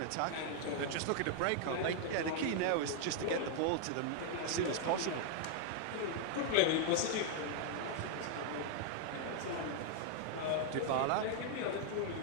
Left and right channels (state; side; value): different; both; correlation 0.00